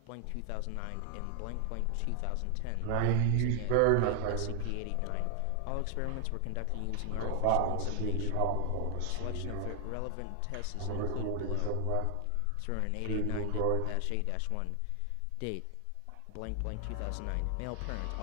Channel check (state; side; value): different; both; correlation 0.00